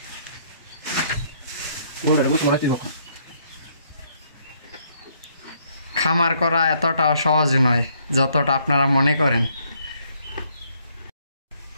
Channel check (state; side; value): inverted; both; correlation -0.68